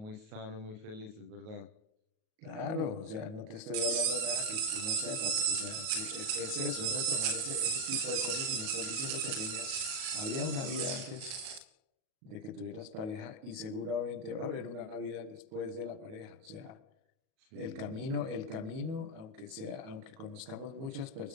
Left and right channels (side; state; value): left; late; 37 ms